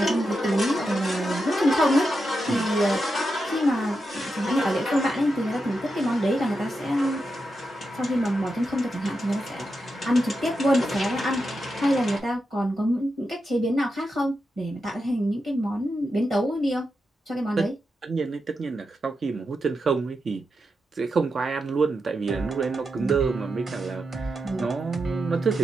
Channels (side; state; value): both; normal; correlation 0.87